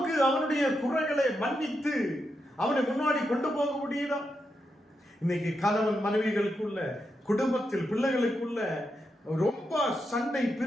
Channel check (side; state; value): both; normal; correlation 0.85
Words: அவனுடைய குறைகளை மன்னித்து அவனை முன்னாடி கொண்டு போக முடியுதா? இன்னைக்கு கணவன் மனைவிகளுக்குள்ள, குடும்பத்தில் பிள்ளைகளுக்குள்ள ரொம்ப சண்டை,